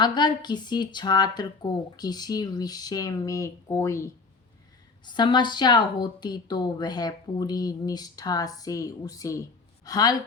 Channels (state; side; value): quieter; right; 4.2 dB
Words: किसी छात्र को किसी विषय में कोई समस्या होती तो वह पूरी निष्ठा से उसे हल